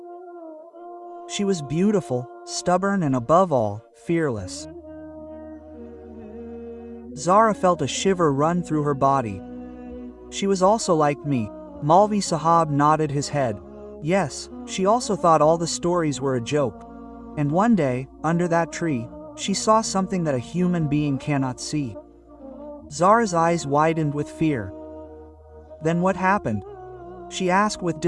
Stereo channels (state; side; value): identical; both; correlation 1.00